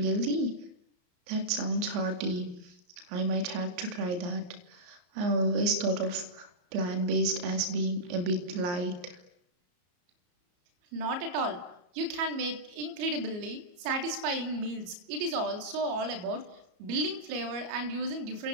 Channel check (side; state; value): left; late; 33 ms